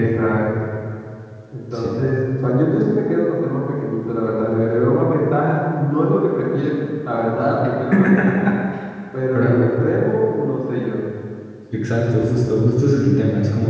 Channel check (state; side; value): identical; both; correlation 1.00